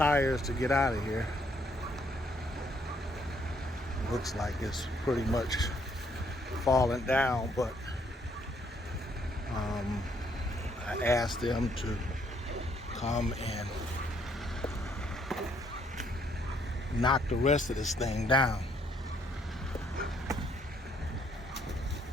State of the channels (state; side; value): normal; both; correlation 0.69